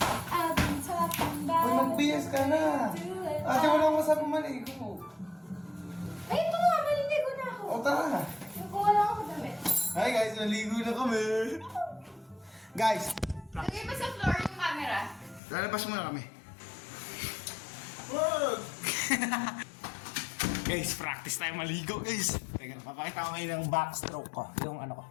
I've been talking Uy, about mag-BS ka na. Ate, wala akong masabi maligo. tara. Kuha lang ako damit. Hi guys, naligo na kami. Guys, Lagay pa sa floor yung camera. lalabas muna kami. Wag! Guys, practice tayo maligo guys. Teka, papakita ko ngayon ng backstroke ko. Yung ano ko.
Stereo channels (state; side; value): drops out; right; at 15.4 s